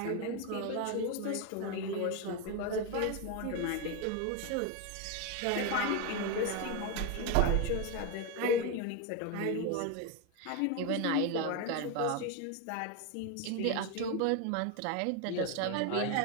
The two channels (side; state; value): both; different; correlation 0.02